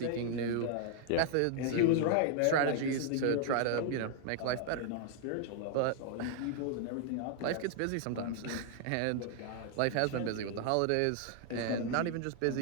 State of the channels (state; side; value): different; both; correlation -0.01